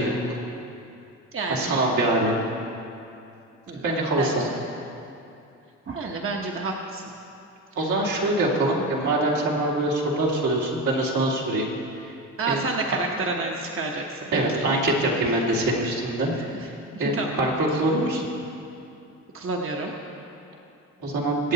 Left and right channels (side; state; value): both; normal; correlation 0.20